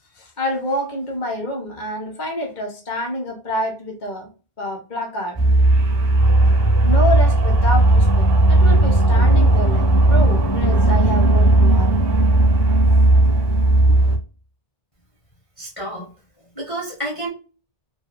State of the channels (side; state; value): right; late; 1.5 ms